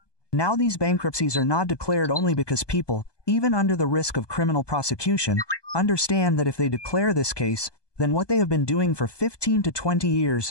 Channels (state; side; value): late; right; 1.2 ms